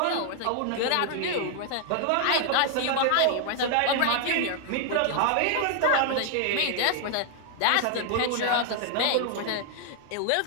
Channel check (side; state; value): both; different; correlation 0.00